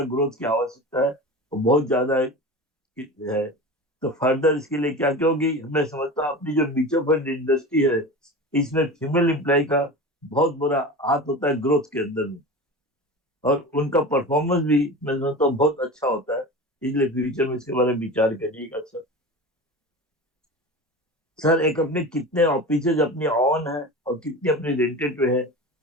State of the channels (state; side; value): normal; both; correlation 0.31